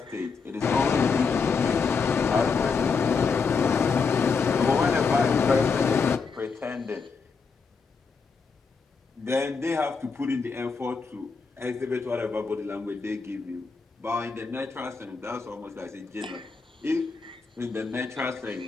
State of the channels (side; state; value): right; quieter; 5.0 dB